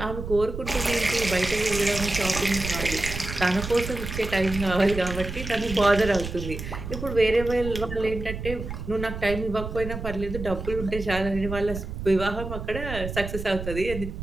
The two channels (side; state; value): right; noise; rumble, 7 dB below the sound